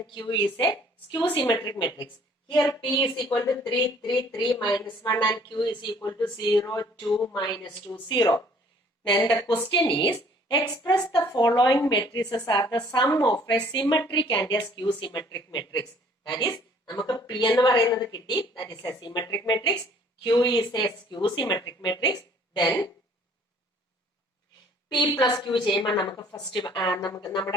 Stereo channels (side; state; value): both; normal; correlation 0.57